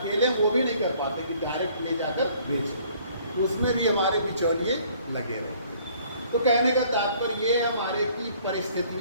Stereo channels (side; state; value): both; inverted; correlation -0.59